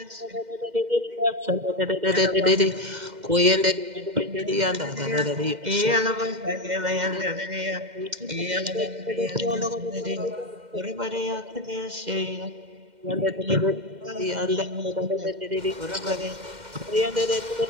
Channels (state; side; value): late; left; 2.1 ms